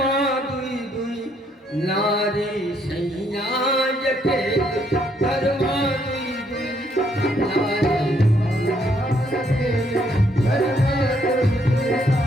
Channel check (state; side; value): normal; both; correlation 0.71